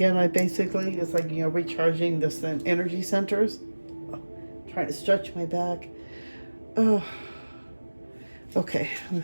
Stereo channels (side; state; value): both; inverted; correlation -1.00